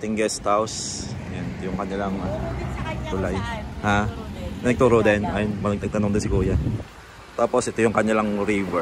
guest house, yan yung kanilang tulay. Ha? Nagturo din. Ayun, nagtanong din si Kuya. Tapos ito yung kanilang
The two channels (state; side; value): identical; both; correlation 1.00